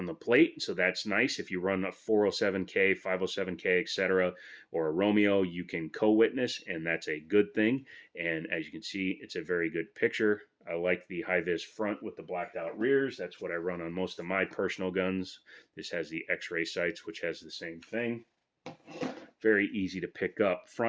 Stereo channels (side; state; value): both; identical; correlation 1.00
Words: the plate, so that's nice. If you run a 407K, 507K, etc., or a Romeo, you can co-witness, and that's a good thing. And as you can see, it's a very good picture. I like the high-vis front with the blacked out rears. That's what I run on most of my personal guns. This has the X-ray sights, which has the same thing. Very easy to pick up.